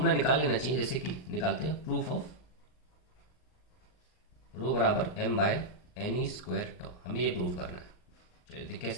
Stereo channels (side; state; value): right; late; 39 ms